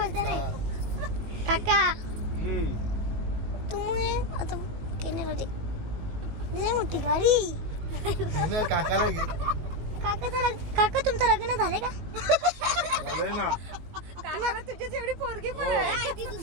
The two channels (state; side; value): late; left; 19 ms